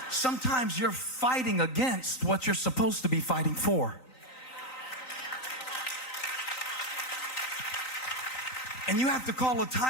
Sometimes you're fighting against what you're supposed to be fighting for. And you have to call a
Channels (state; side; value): late; right; 3.9 ms